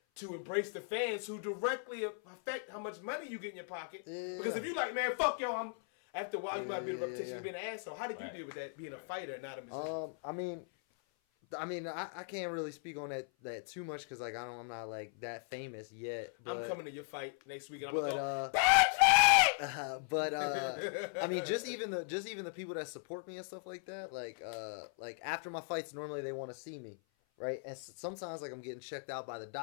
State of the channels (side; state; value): right; silent; 52 dB below the other